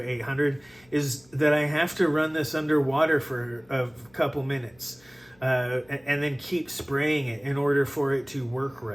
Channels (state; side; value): noise; left; hum, 30 dB below the sound